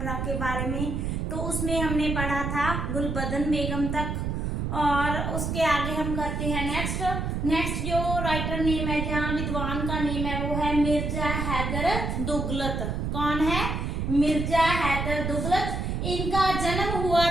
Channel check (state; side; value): noise; right; rumble, 2 dB below the sound